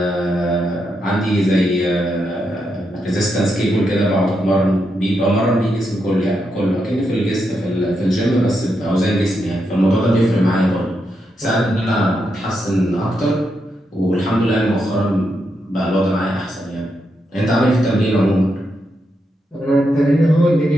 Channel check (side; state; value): both; normal; correlation 0.83